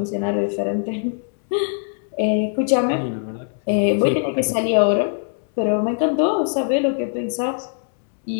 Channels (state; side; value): silent; right; 65 dB below the other